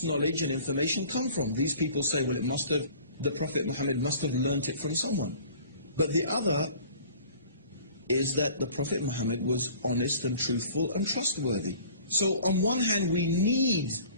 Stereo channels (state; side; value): inverted; both; correlation -0.48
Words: knowledge and information come from? These people say, well, the Prophet Muhammad must have learnt it from someone. But the other is that the Prophet Muhammad was honest and truthful and trustworthy. So on one hand, we need,